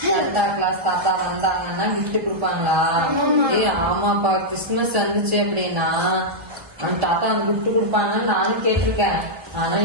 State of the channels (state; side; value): late; left; 1.7 ms